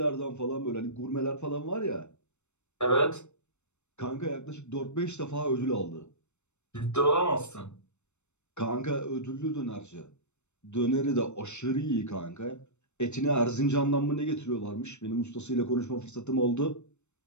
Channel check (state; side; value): late; right; 0.82 ms